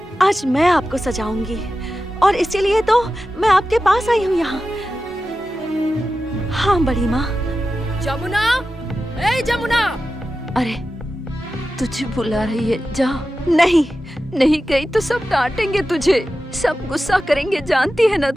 आज मैं आपको सजाऊंगी, और इसीलिए तो मैं आपके पास आई हूँ यहाँ। हाँ बड़ी माँ। जमुना, ए जमुना! अरे तुझे बुला रही है, जा। नहीं गई तो सब डांटेंगे तुझे, सब गुस्सा करेंगे, जानती है ना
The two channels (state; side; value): normal; both; correlation 0.93